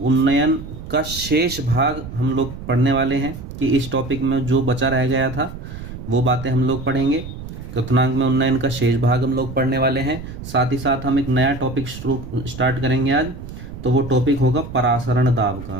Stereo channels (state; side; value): noise; right; rumble, 11 dB below the sound